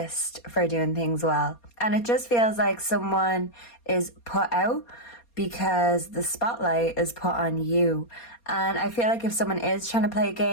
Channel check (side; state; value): right; late; 4.2 ms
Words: for doing things well. And it just feels like someone is put out because the spotlight is put on you. And I feel like if someone is trying to play